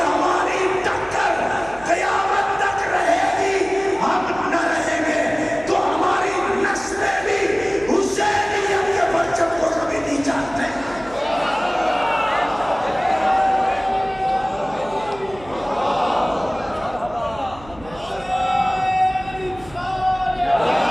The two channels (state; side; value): noise; right; hum, 20 dB below the sound